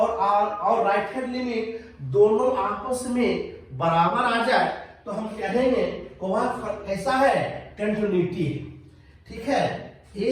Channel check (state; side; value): identical; both; correlation 1.00